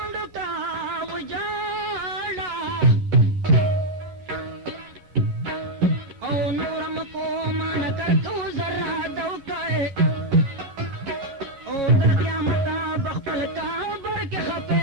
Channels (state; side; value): late; left; 10 ms